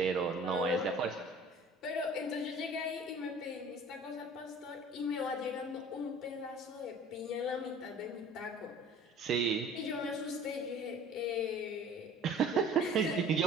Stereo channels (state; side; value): normal; both; correlation 0.46